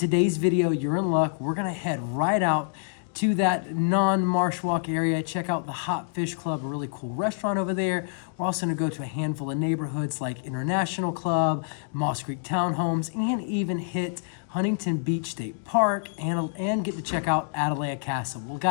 video, you're in luck. We're gonna head right out to that non-marsh walk area, check out the Hot Fish Club, a really cool restaurant over there. We're also gonna go to a handful of neighborhoods like International Club, Moss Creek Townhomes, and even hit Huntington Beach State Park and get to check out Atalaya Castle. Well,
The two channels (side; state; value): right; silent; digital silence